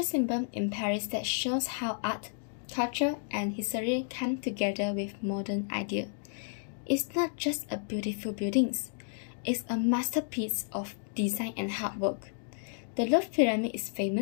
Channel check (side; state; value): right; silent; digital silence